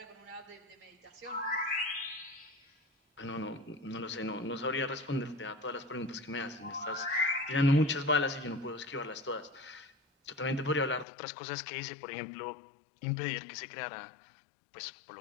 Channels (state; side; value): drops out; right; at 11.1 s